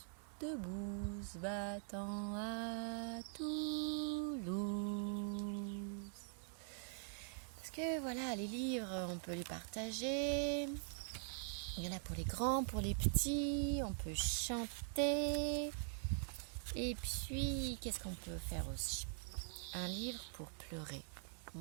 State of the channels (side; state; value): left; silent; digital silence